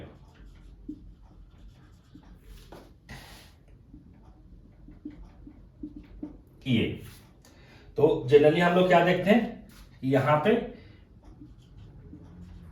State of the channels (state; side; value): identical; both; correlation 1.00